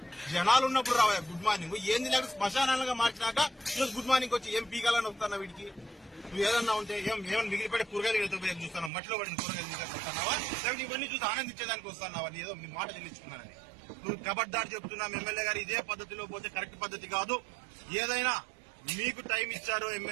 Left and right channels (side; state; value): left; drops out; at 8.9 s